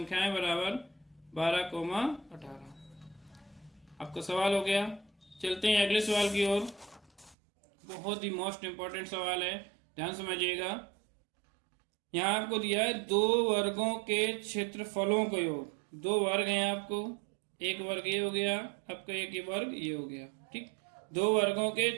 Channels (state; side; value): drops out; left; at 7.4 s